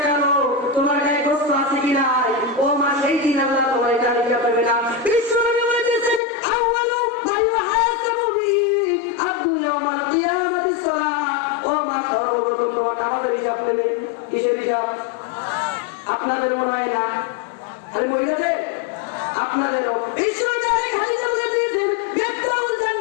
কালো, তোমার গায়ে গোস্ত আছে কি নাই, ও মা সেই দিন আল্লাহ তোমার এটা হিসাব নেবে না। বিশ্বনবী বলেছেন আউয়ালু মা ইউহাসাবু বিহি আবদু ইয়াউমাল কিয়ামাতিস সালাত। ও মা সর্বপ্রথম তোমার নামাজের হিসাব নেবে। কিসের হিসাব? আপনাদের মনে হয় না, আরে মহিলাদের আপনাদেরও। বিশ্বনবী খালিদা বলে দিয়েছেন বেতাউল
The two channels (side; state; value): right; drops out; at 6.2 s